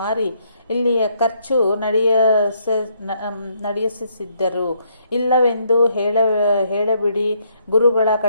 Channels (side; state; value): both; inverted; correlation -0.71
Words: ಇಲ್ಲಿಯ ಖರ್ಚು ನಡೆಸಿದ್ದರು. ಇಲ್ಲವೆಂದು ಹೇಳಬಿಡಿ. ಗುರುಗಳ